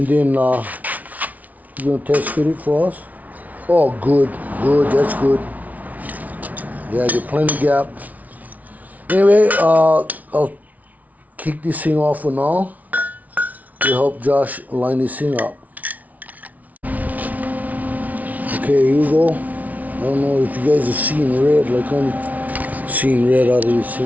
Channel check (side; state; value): left; late; 0.072 ms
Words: then you're gonna test fit it for us. Oh, good, that's good. Yeah, get plenty gap. Anyway, I'll kick this thing off for now to help Josh line this thing up. Okay, here we go. I don't know if you guys are seeing red like I'm seeing red out of this